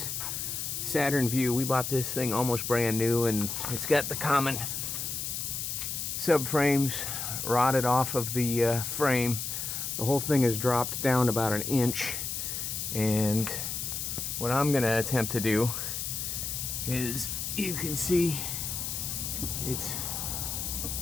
Saturn VUE. We bought this thing almost brand new, and it's got the common subframes rotted off of the frame. The whole thing has dropped down about an inch, and what I'm going to attempt to do is, you can see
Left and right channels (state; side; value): noise; left; hiss, 3 dB below the sound